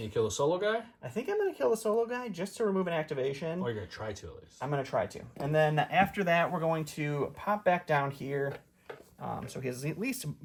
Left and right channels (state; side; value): identical; both; correlation 1.00